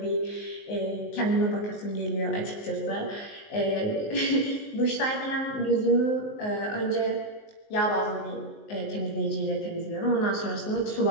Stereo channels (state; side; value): late; right; 19 ms